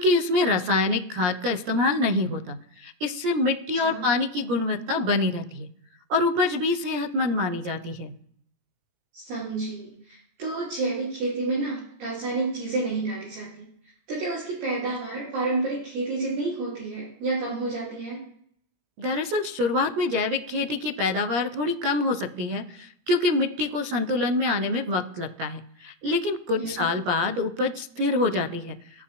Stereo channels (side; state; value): left; late; 17 ms